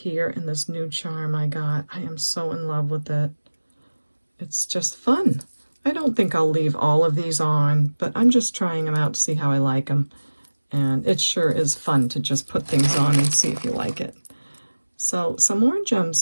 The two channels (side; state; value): both; inverted; correlation -1.00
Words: and this new charm I got. I am so in love with it. It's just fun. I don't think I'll leave all of these on, but I'm just trying them out to see how I like them. And it sure is fun to just put things on and see if you like it. So some more